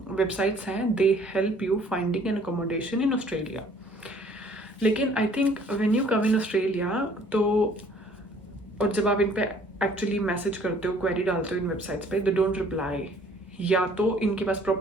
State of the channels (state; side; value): normal; both; correlation 0.57